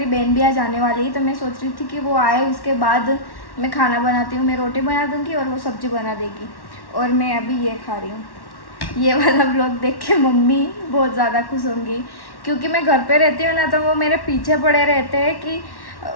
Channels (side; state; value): right; late; 1.1 ms